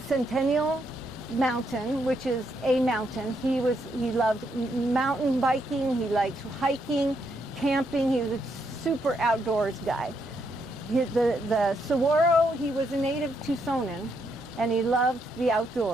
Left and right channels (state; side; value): normal; both; correlation 0.77